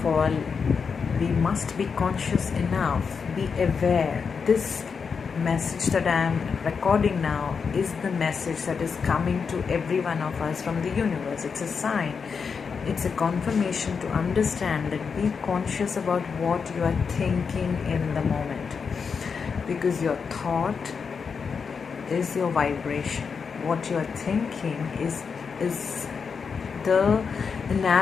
all, we must be conscious enough, be aware. This message that I am recording now is the message that is coming to every one of us from the universe. It's a sign, it's a confirmation to understand that be conscious about what you are thinking in the moment, because your thought is your vibration. What you are thinking is the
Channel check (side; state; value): right; quieter; 5.8 dB